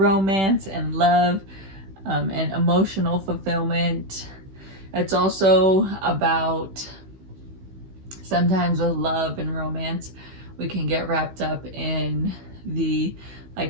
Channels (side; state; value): left; late; 16 ms